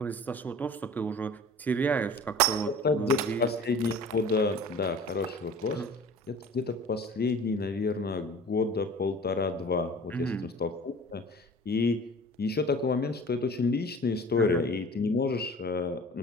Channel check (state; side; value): normal; both; correlation 0.44